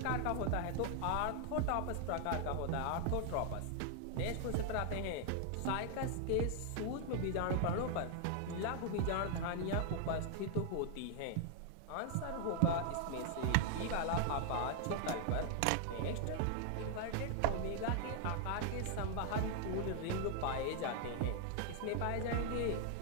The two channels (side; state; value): both; different; correlation 0.00